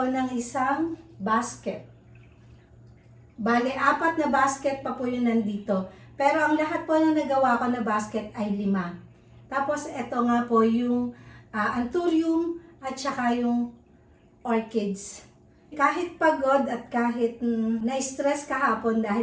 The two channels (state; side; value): identical; both; correlation 1.00